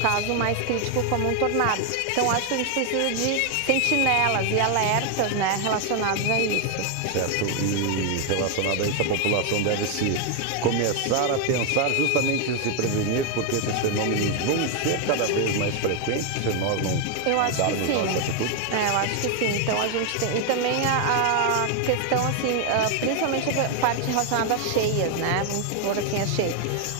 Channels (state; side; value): different; both; correlation 0.01